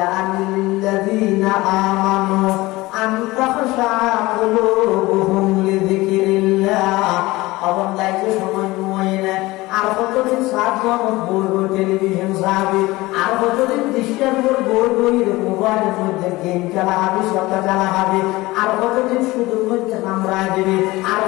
আনিল্লাযীনা আমানু আন তাখশা কুলুবুহুম লিযিকরিল্লাহ অবন দাইতে সময় নয় না আর কতদিন 7 জন বই টেলিভিশন সাহাবি আর কতদিন দৃশ্যের উপর বই মোবাইলের মধ্যে গেম খেলা হবে সত্তা খেলা হবে আর কতদিন শুধুর মধ্যে নামরা দেবে আর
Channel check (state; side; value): quieter; right; 20.1 dB